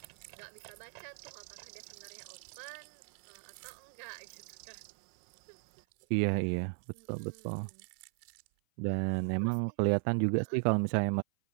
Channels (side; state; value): left; silent; 53 dB below the other